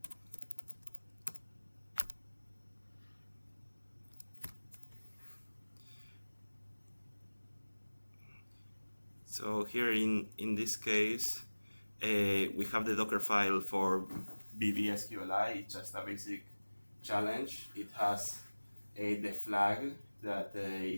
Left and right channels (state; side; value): inverted; both; correlation -1.00